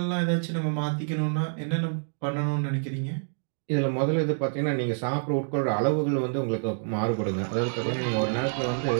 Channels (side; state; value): left; silent; digital silence